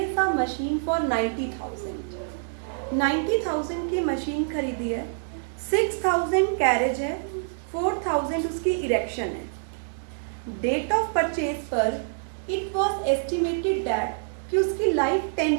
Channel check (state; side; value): silent; left; digital silence